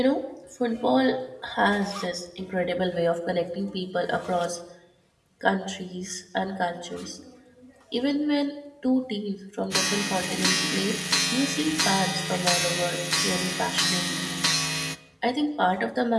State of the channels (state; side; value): identical; both; correlation 1.00